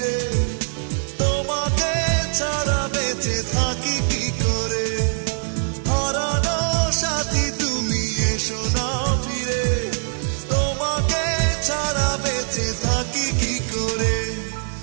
তোমাকে ছাড়া বেঁচে থাকি কি করে হারানো সাথী তুমি এসো না ফিরে তোমাকে ছাড়া বেঁচে থাকি কি করে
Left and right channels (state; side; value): silent; left; digital silence